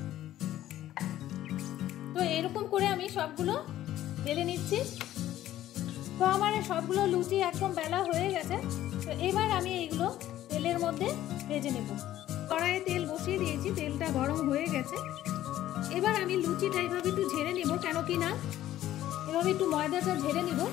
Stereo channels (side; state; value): right; quieter; 13.3 dB